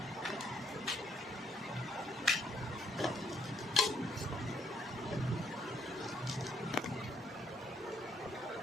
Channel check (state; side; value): normal; both; correlation 0.71